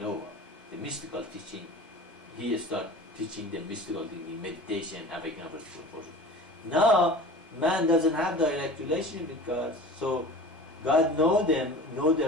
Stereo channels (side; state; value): both; normal; correlation 0.39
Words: The mystical teaching, he starts teaching the mystical thing, meditation, having a portion. Now, man doesn't have direct relationship with God, so God know